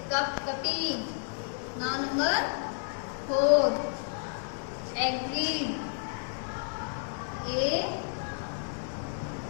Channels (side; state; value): right; silent; digital silence